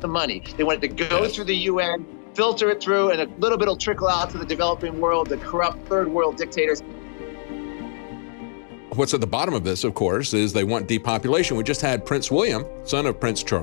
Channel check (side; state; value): right; silent; digital silence